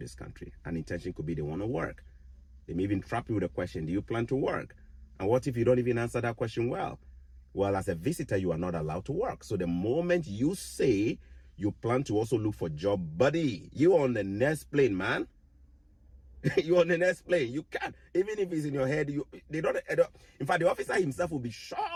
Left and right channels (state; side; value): identical; both; correlation 1.00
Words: country. An intention could be they want to work. They may even trap you with a question, do you plan to work? And what if you don't even answer that question well? Well, as a visitor, you are not allowed to work. So the moment you say you plan to also look for job, buddy, you on the next plane, man. You're on the next plane. You can't, even if it's in your head, they don't. In fact, the officer himself will be